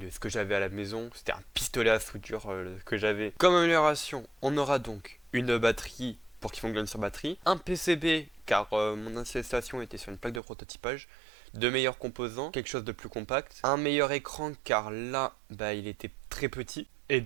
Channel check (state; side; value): drops out; left; at 10.4 s